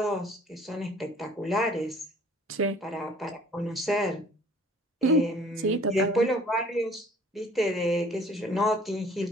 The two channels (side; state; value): both; normal; correlation 0.53